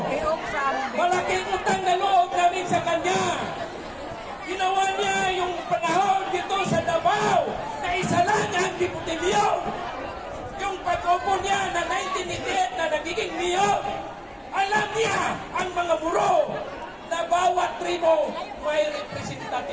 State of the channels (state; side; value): identical; both; correlation 1.00